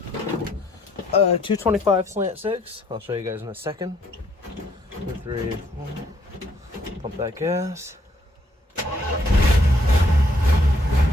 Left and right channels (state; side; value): normal; both; correlation 0.68